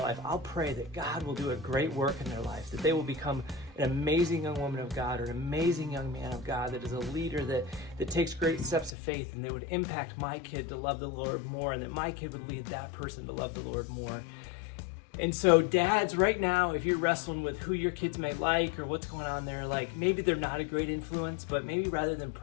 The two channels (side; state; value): right; drops out; at 8.9 s